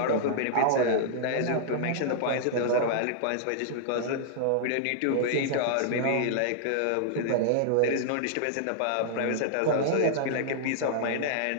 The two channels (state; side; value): different; both; correlation -0.01